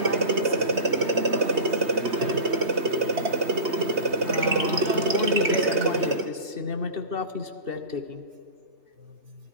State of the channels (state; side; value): late; left; 3.2 ms